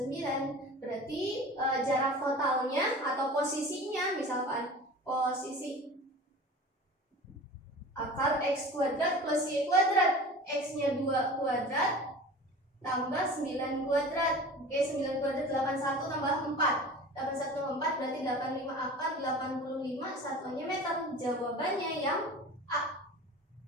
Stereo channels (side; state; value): both; normal; correlation 0.38